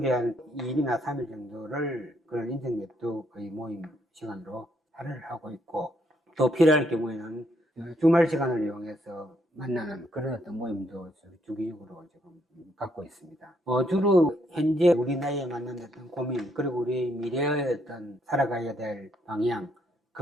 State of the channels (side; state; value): both; normal; correlation 0.73